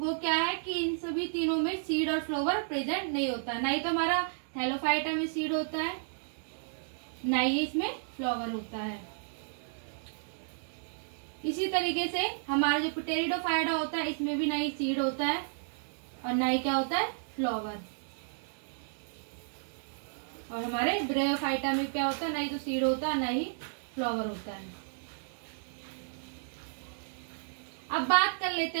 क्या है कि इन सभी तीनों में सीड और फ्लावर प्रेजेंट नहीं होता है। ना ही तो हमारा थैलोफाइटा में सीड होता है, ना ही इसमें फ्लावर होता है। इसी तरीके से हमारा जो पिटेरिडोफाइटा होता है इसमें भी ना ही सीड होता है और ना ही क्या होता है फ्लावर। और हमारे ब्रेयोफाइटा में क्या होता है, ना ही तो सीड होता है ना ही फ्लावर होता है। अब बात कर लेते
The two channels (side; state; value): left; silent; digital silence